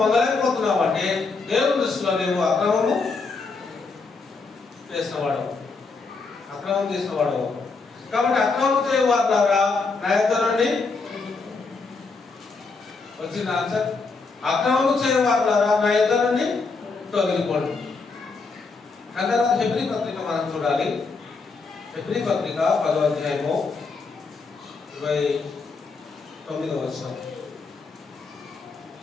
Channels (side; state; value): right; quieter; 4.3 dB